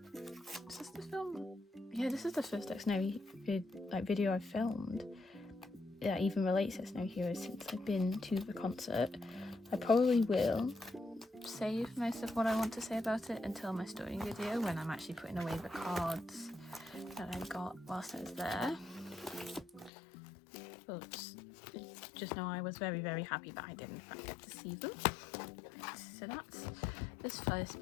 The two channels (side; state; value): right; drops out; at 19.9 s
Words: Is this the film? Yeah, this is the first Xdinary video I've filmed that even relates to Xdinary Heroes since I've been to the concert. I probably will save most of what I want to say about it until my story video, when I'm actually putting away the cards that I got whilst I was there. But just know I was very, very happy that I did in fact get to see them. So that's this first